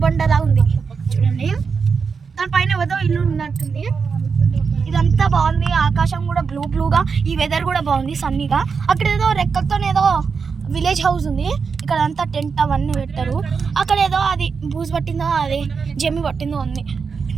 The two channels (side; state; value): left; quieter; 5.5 dB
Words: ఉంది చూడండి, దానిపైన ఏదో ఇల్లు ఉన్నట్టుంది. ఇదంతా బాగుంది. ఆకాశం కూడా బ్లూగా, ఈ వెదర్ కూడా బాగుంది, సన్నీగా. అక్కడ ఏదో రెక్కలతో ఏదో విలేజ్ హౌస్ ఉంది. ఇక్కడ అంతా టెంట్ అవన్నీ పెట్టారు. అక్కడ ఏదో అది బూజు పట్టిందో, అది జమ్మి పట్టిందో ఉంది.